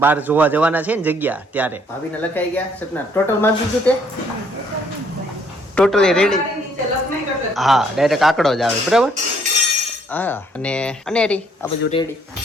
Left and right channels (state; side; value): normal; both; correlation 0.66